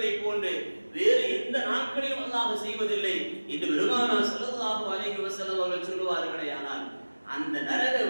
போன்று வேறு எந்த நாட்களிலும் அல்லாஹ் செய்வதில்லை என்று பெருமானார் ஸல்லல்லாஹு அலைஹி வஸல்லம் அவர்கள் சொல்லுவார்களேயானால், அந்த நரக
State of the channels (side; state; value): both; inverted; correlation -1.00